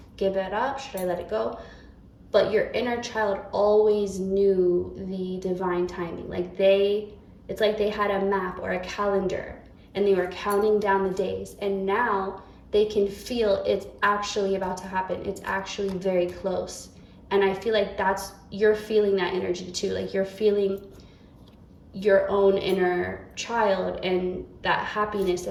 give it up? Should I let it go? But your inner child always knew the divine timing. Like it's like they had a map or a calendar and they were counting down the days, and now they can feel it's actually about to happen. It's actually very close. And I feel like you're feeling that energy too. Like you're feeling your own inner child and that happiness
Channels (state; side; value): identical; both; correlation 1.00